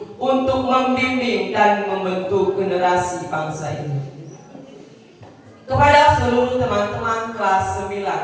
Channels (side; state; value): both; identical; correlation 1.00